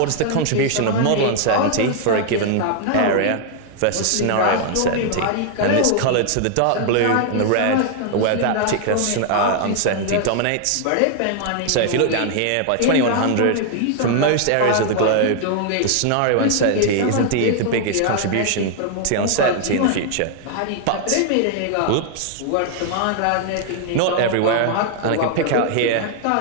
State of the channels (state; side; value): different; both; correlation 0.00